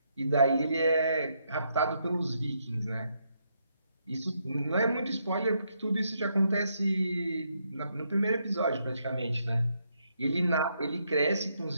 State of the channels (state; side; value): inverted; both; correlation -0.77